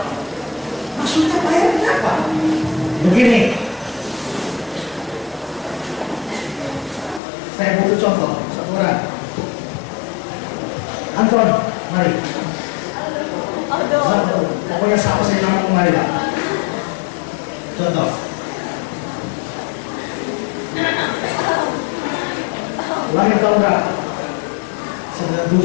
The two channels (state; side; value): drops out; right; at 7.2 s